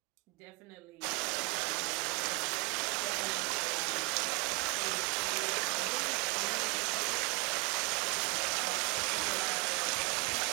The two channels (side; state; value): left; quieter; 26.2 dB